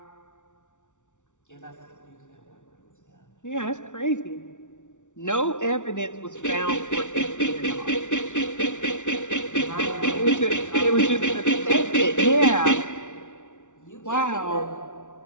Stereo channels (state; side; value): late; right; 0.86 ms